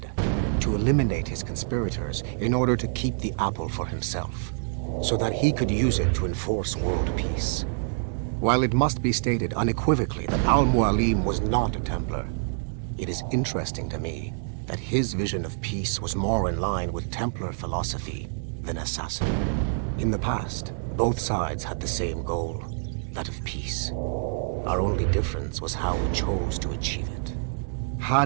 to eliminate his conspirators in order to keep the apple for himself, so that he could use it to enforce world peace. While it must be stated unequivocally that Al-Mualim was not a Templar, it is interesting to me that his vision of peace was more in line with Templar philosophy than assassin. In the past, both sides had the same goal, that of peace. Our only difference was how we chose to achieve it.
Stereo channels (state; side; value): silent; left; digital silence